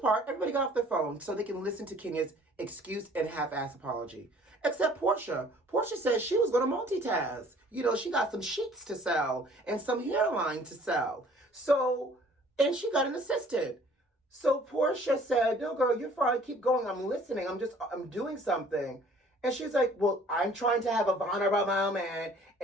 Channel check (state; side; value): normal; both; correlation 0.54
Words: part, everybody got off their phone so they can listen to Kenya's excuse and half-ass apology. Except Portia. Portia said she was going to multitask. You know, she got some sheets to sell and some hairline to sell. So, and she got an assistant. So Portia said, no, girl, you're fine. Keep going. I'm listening. I'm doing something. And she's like, well, I'm trying to have a vulnerable moment,